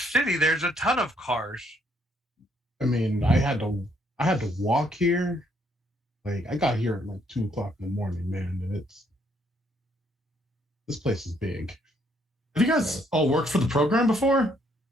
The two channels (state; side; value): normal; both; correlation 0.69